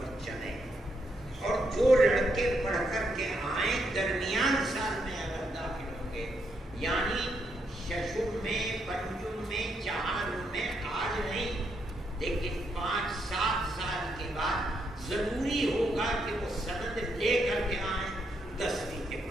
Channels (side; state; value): both; normal; correlation 0.78